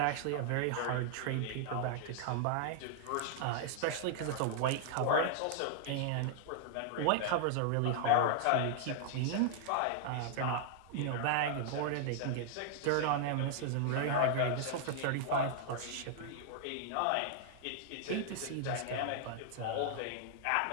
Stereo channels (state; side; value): different; both; correlation -0.01